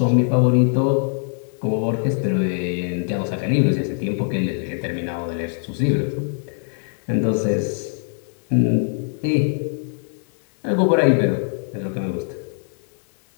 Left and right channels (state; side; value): silent; right; 59 dB below the other